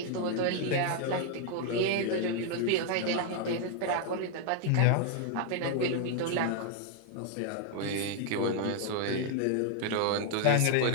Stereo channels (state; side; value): different; both; correlation 0.00